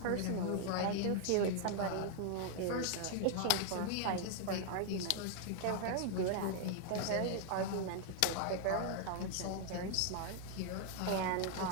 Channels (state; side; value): different; both; correlation 0.00